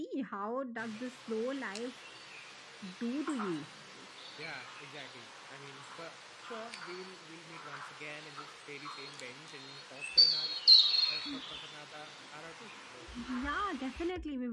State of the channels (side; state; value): both; identical; correlation 1.00